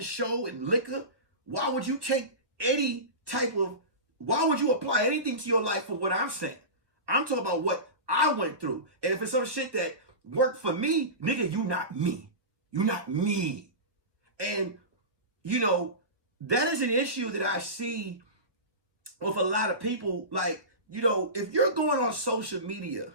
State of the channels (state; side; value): late; left; 1.4 ms